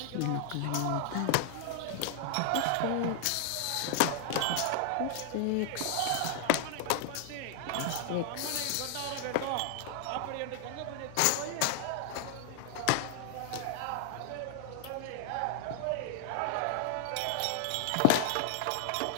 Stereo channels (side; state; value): both; different; correlation 0.00